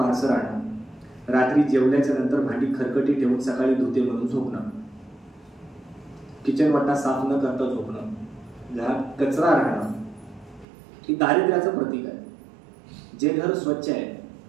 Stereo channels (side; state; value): left; drops out; at 10.7 s